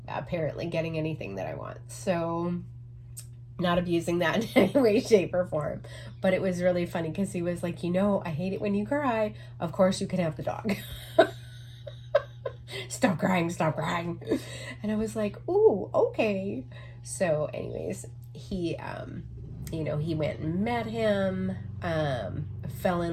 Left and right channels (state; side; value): identical; both; correlation 1.00